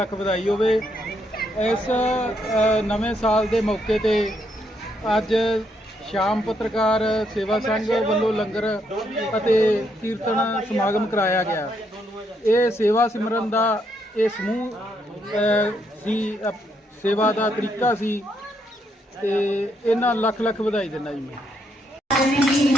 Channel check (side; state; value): both; normal; correlation 0.76